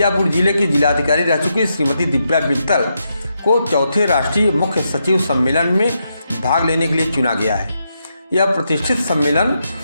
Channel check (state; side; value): inverted; both; correlation -0.82